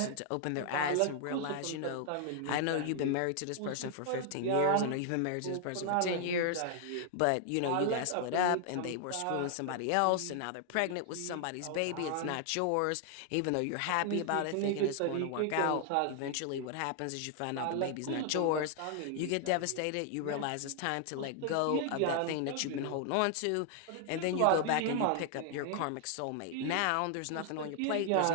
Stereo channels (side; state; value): both; different; correlation 0.00